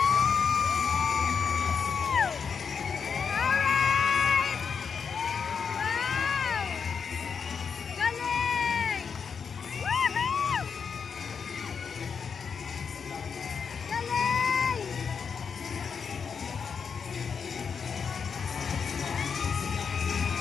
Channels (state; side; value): quieter; right; 6.2 dB